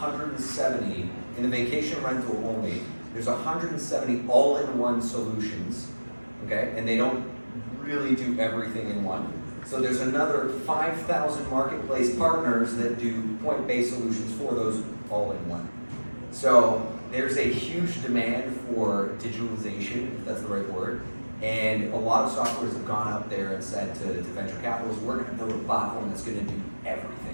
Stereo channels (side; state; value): both; inverted; correlation -1.00